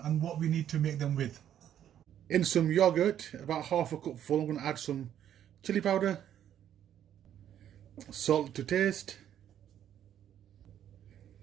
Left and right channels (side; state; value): left; quieter; 10.4 dB